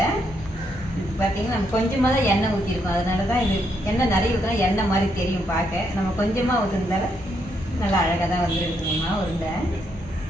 பார்த்தீங்கன்னா நம்ம கொஞ்சமாக தான் எண்ணெய் ஊற்றிருக்கோம். அதனால தான் இது எண்ணெய் நிறைய ஊற்றினா எண்ணெய் மாதிரி தெரியும் பார்க்க. நம்ம கொஞ்சமாக ஊற்றுனதால நல்லா அழகாக தான் வந்துருக்குங்கம்மா உருண்டை.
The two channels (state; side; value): normal; both; correlation 0.76